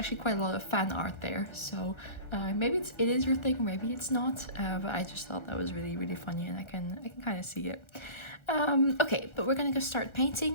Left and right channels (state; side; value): late; right; 1.3 ms